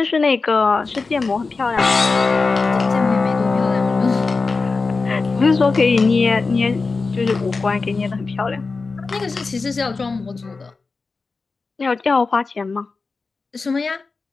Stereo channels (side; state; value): right; quieter; 4.1 dB